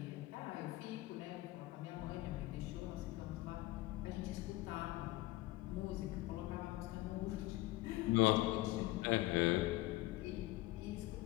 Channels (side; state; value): right; quieter; 18.5 dB